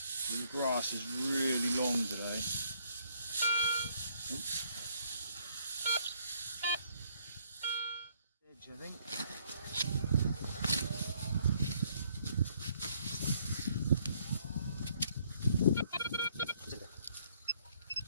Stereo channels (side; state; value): both; inverted; correlation -0.67